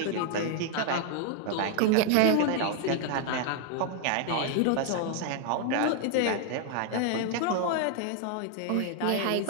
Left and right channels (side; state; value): both; different; correlation 0.00